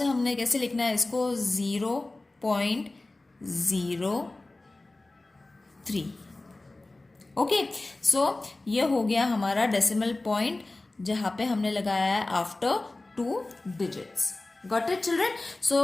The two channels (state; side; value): quieter; right; 3.0 dB